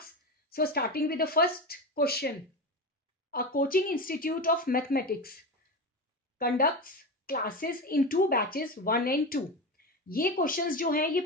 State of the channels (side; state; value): both; normal; correlation 0.21